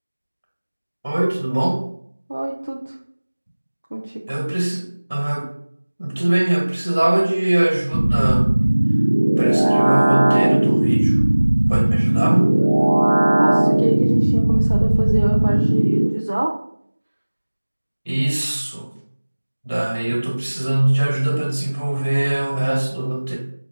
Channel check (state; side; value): inverted; both; correlation -1.00